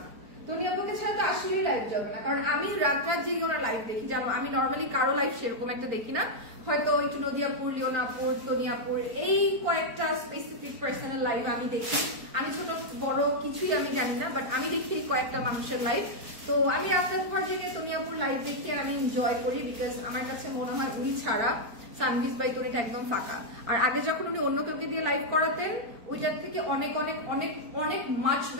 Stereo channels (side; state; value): left; late; 4.5 ms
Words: তনিয়াপুকে ছাড়া তো আসলেই লাইভ জমে না। কারণ আমি রাত রাত জেগে ওরা লাইভ দেখি, জানো? আমি নর্মালি কারো লাইভ সেরকম একটা দেখি না, হয়তো একটু নদিয়াপুর, লিওনাপুর, তনিয়াপুর, এই কয়েকটা স্পেসিফিক পার্সনের লাইভ আমি দেখি। আমি ছোট বড় কিছুই আমি জানি না, বাট আমি দেখি কয়েকটা মানুষের লাইভ। তো আমি রাতের পর জেগে তনিয়াপুর লাইভ দেখে আমি এনজয় করি, বিকজ আমার কাছে মনে হয় উনি ছাড়া সানভিস বাই টনিটা একদম ফাঁকা। আর আগে যখন উনি অন্য কাউকে দিয়ে লাইভ করাতেন, ওইটার থেকে অনেক অনেক অনেক অনেক মাচ